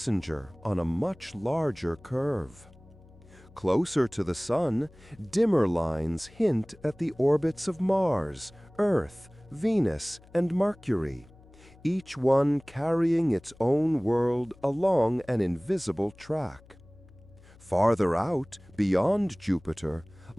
on a much larger curve. Closer to the Sun, dimmer lines hint at the orbits of Mars, Earth, Venus, and Mercury, each one carrying its own world along an invisible track. Farther out, beyond Jupiter,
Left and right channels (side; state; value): left; noise; hum, 24 dB below the sound